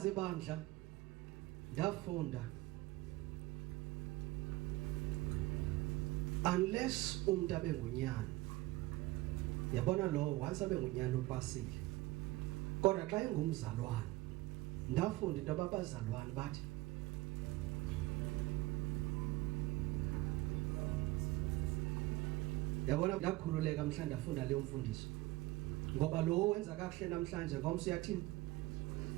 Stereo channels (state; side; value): quieter; left; 19.4 dB